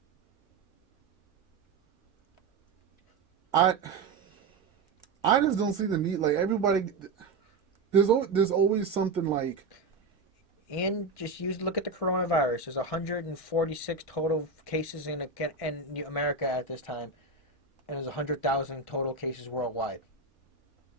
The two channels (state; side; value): quieter; left; 4.1 dB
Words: I just don't see the need. Like, everybody, there's always something like. And just look at the coronavirus. There's 146 total cases in America at this time, and there's 100,000 total cases worldwide.